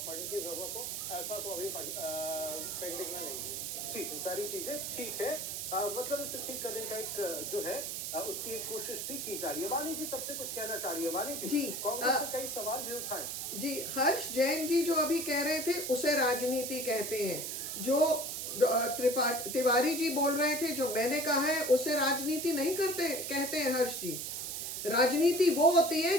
की जरूरत हो, ऐसा तो अभी पेंडिंग में नहीं। ठीक है, सारी चीजें ठीक है। मतलब इसे ठीक करने का एक जो है उसकी एक कोशिश भी की जा रही है। वाणी जी तब से कुछ कहना चाह रही है। वाणी जी, जी, कांग्रेस से कई सवाल भी उठाए। जी, हर्ष जैन जी जो अभी कह रहे थे उसे राजनीति कहते हैं। जो तिवारी जी बोल रहे थे, जो मैंने कहा है, उसे राजनीति नहीं कहते हैं हर्ष जी। राजनीति वो होती है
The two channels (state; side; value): noise; right; hiss, 4 dB below the sound